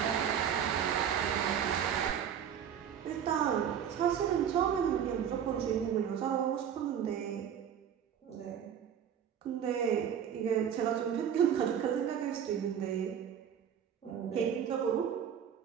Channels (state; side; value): quieter; left; 8.7 dB